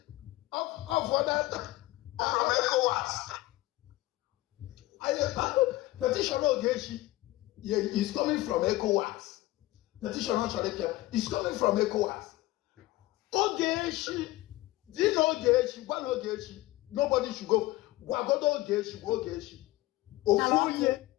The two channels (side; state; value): right; quieter; 18.2 dB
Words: of that from ECOWAS petition Ogechi is coming from ECOWAS. Petition is coming from ECOWAS. Ogechi, do you know Ogechi? One Ogechi, nobody should go. Wagodo Ogechi. Ofonye.